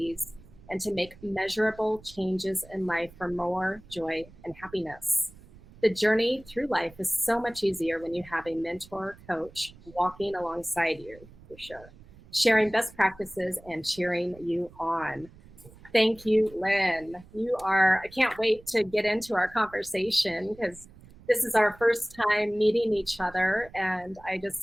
and to make measurable changes in life for more joy and happiness. The journey through life is so much easier when you have a mentor coach walking alongside you, for sure, sharing best practices and cheering you on. Thank you, Lynne. I can't wait to get into our conversation because this is our first time meeting each other. And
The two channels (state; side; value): noise; right; rumble, 22 dB below the sound